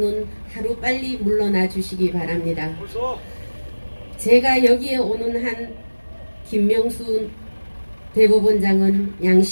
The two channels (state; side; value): inverted; both; correlation -1.00